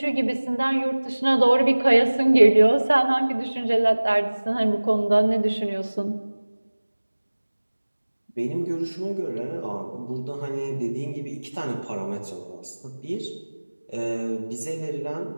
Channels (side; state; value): both; inverted; correlation -1.00